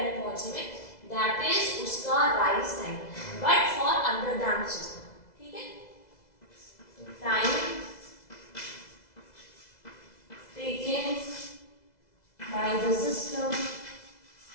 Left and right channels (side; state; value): right; late; 2.0 ms